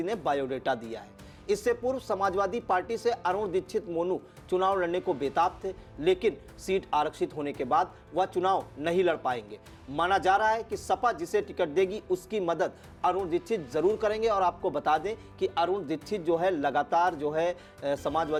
ने बायोडेटा दिया है। इससे पूर्व समाजवादी पार्टी से अरुण दीक्षित मोनू चुनाव लड़ने को बेताब थे, लेकिन सीट आरक्षित होने के बाद वह चुनाव नहीं लड़ पाएंगे। माना जा रहा है कि सपा जिसे टिकट देगी उसकी मदद अरुण दीक्षित जरूर करेंगे। और आपको बता दें कि अरुण दीक्षित जो है लगातार जो है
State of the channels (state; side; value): identical; both; correlation 1.00